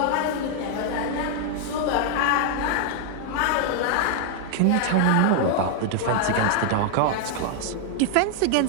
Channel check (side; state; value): both; different; correlation 0.00